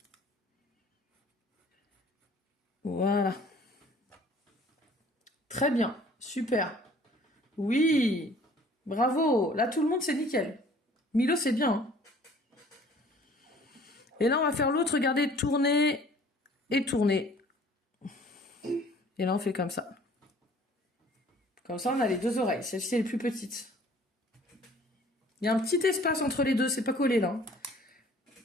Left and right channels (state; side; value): normal; both; correlation 0.53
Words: Voilà. Très bien. Super. Oui. Bravo. Là, tout le monde, c'est nickel. Milo, c'est bien. Hein. Et là, on va faire l'autre. Regardez, tourner et tourner. Et là, on fait comme ça. Comme ça, on a les 2 oreilles. Celle-ci est les plus petite. Il y a un petit espace entre les deux. C'est pas collé, là.